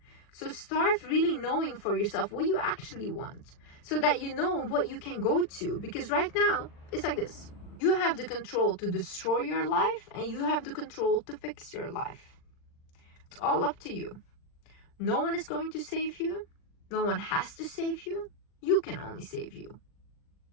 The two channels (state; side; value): late; right; 40 ms